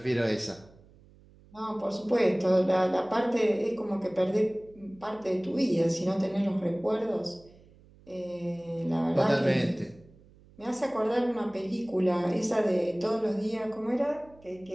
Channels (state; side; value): noise; right; hum, 26 dB below the sound